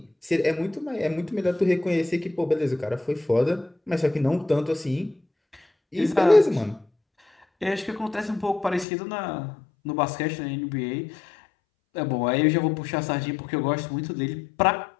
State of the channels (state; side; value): drops out; right; at 8.8 s